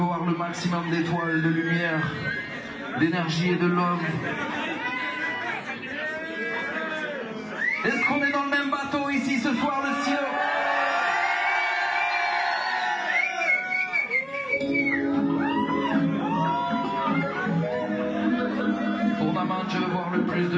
le maximum d'étoiles, de lumière, d'énergie et de love. Est-ce qu'on est dans le même bateau ici ce soir, le ciel? Pour Naman, je veux voir le plus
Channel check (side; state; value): both; identical; correlation 1.00